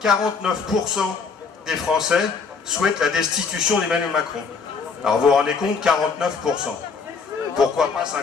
49% des Français souhaitent la destitution d'Emmanuel Macron. Alors, vous vous rendez compte, 49%. Pourquoi pas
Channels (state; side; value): quieter; right; 5.2 dB